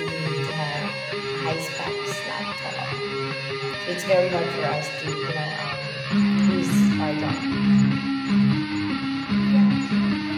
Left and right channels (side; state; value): both; identical; correlation 1.00